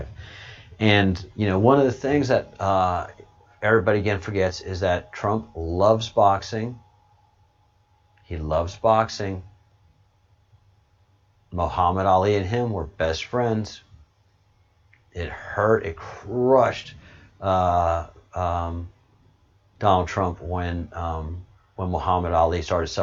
And, one of the things that everybody again forgets is that Trump loves boxing. He loves boxing. Muhammad Ali and him were best friends. It hurt, it crushed Donald Trump when Muhammad Ali started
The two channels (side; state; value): both; identical; correlation 1.00